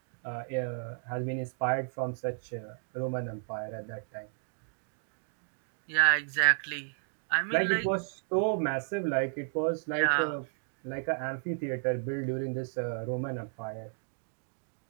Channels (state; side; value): silent; left; digital silence